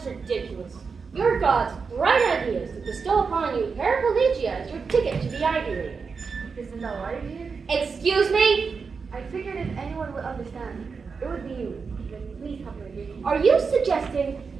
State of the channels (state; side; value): quieter; left; 5.2 dB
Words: ridiculous. Your God's bright ideas to bestow upon you paraplegia as your ticket to the Ivy League. Isn't that right, dear? Excuse me? I figured if anyone would understand, it would be you. Then please help me. Are you suggesting